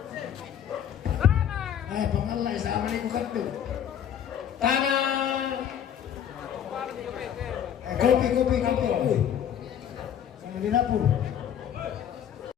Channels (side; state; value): right; quieter; 9.3 dB